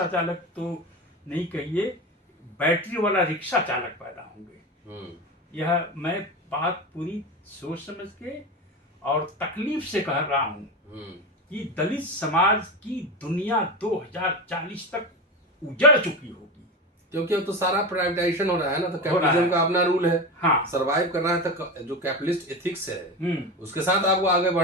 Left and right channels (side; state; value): both; normal; correlation 0.22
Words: चालक तो नहीं कहिए, बैटरी वाला रिक्शा चालक पैदा होंगे। यह मैं बात पूरी सोच समझ के और तकलीफ से कह रहा हूं कि दलित समाज की दुनिया 2040 तक उजड़ चुकी होगी, क्योंकि अब तो सारा प्राइवेटाइजेशन हो रहा है ना, तो कैपिटलिज्म का अपना रूल है। हाँ, सरवाइव करना है तो जो कैपिटलिस्ट एथिक्स है उसके साथ आपको आगे